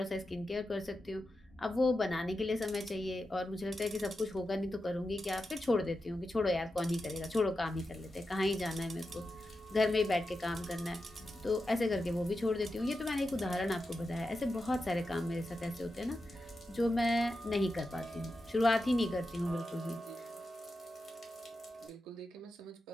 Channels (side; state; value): both; normal; correlation 0.90